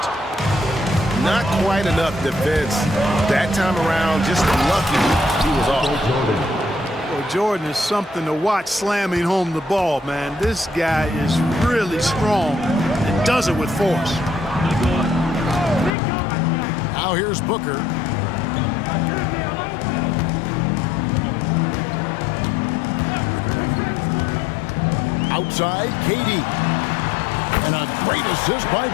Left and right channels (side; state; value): right; drops out; at 16.0 s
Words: Not quite enough defense that time around. Just lucky he was off. Well, Jordan is something to watch slamming home the ball, man. This guy is really strong and does it with force. Now here's Booker. Outside, KD. And a great assist by